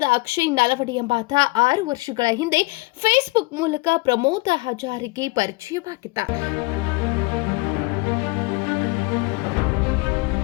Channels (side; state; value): right; quieter; 24.9 dB